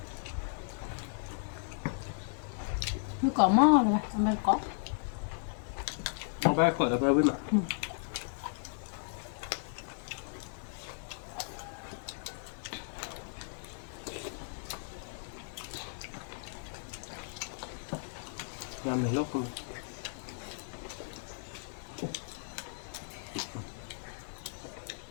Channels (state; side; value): silent; right; digital silence